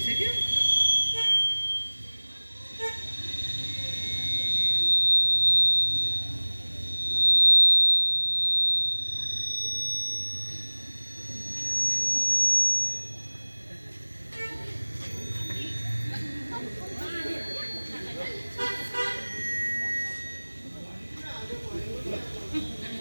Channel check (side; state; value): both; inverted; correlation -1.00